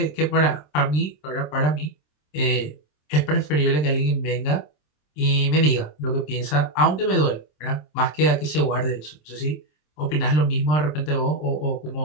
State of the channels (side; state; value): right; late; 27 ms